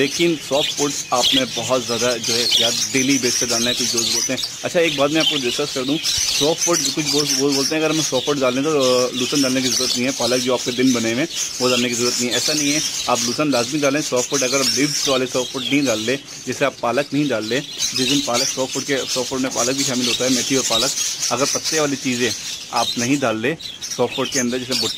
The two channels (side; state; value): both; identical; correlation 1.00